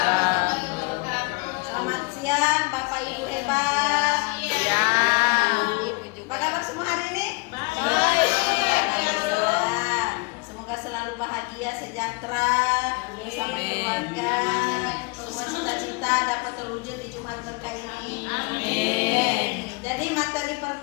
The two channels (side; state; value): right; quieter; 28.8 dB